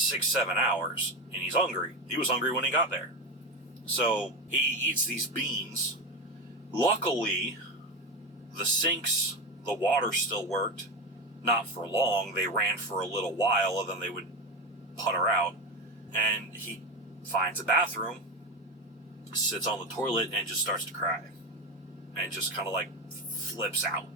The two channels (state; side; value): normal; both; correlation 0.17